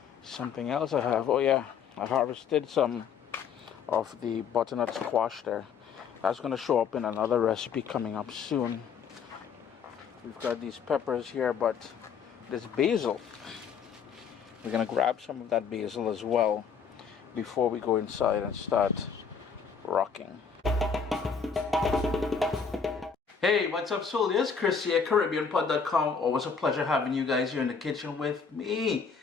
something else I have, oh yeah, I harvested some of the butternut squash there. That's going to show up in another recipe coming up soon. We've got these peppers here, but this basil, we're going to grab some of that basil as well before we go inside and start rocking. Hey, what's up, soldiers? Chris here, CaribbeanPot.com. Always a pleasure having you guys here in the kitchen with me.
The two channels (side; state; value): right; quieter; 6.3 dB